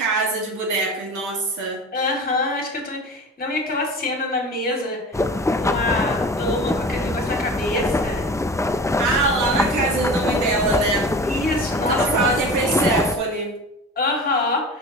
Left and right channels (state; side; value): normal; both; correlation 0.35